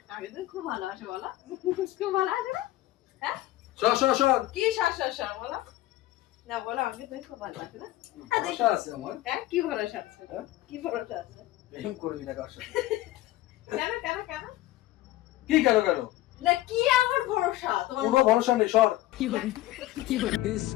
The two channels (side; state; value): right; quieter; 16.2 dB